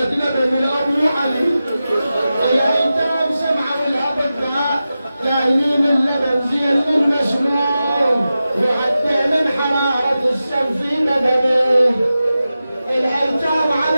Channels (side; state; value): both; inverted; correlation -0.93